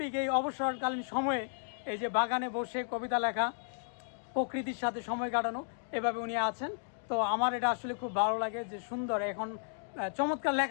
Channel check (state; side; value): silent; right; digital silence